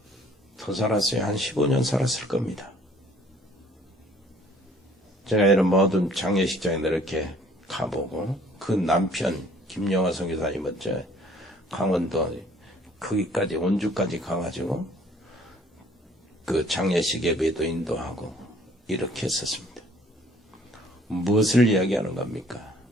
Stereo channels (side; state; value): both; normal; correlation 0.57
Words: 더 살았어요. 한 15년 살았을 겁니다. 제가 이런 모든 장례식장에 이렇게 가보고 그 남편 김영화 선교사님은 강원도 거기까지 원주까지 가가지고 그 장례식 예배도 인도하고 이렇게 했었습니다. 무엇을 이야기하는 겁니까?